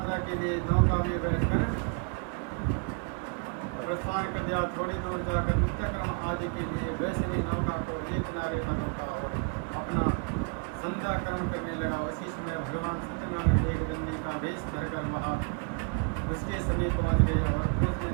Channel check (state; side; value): quieter; left; 38.5 dB